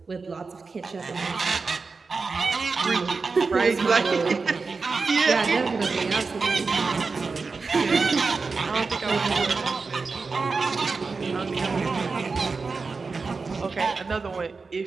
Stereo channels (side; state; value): left; quieter; 4.4 dB